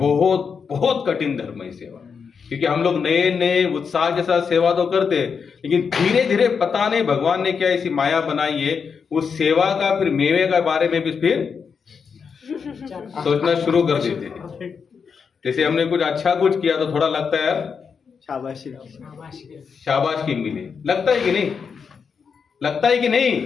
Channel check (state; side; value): quieter; right; 6.1 dB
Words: बहुत कठिन धर्म है सेवा, क्योंकि हम लोग नए नए उत्साह के साथ सेवा तो करते हैं, लेकिन धीरे धीरे पता नहीं भगवान ने क्या ऐसी माया बनाई है, उस सेवा का फिर मेवे के बारे में भी फिर सोचना शुरू कर देते हैं. जैसे हमने कुछ अच्छा कुछ किया तो थोड़ा लगता है यार शाबाशी. शाबाशी मिले, लगता है कि नहीं? लगता है कि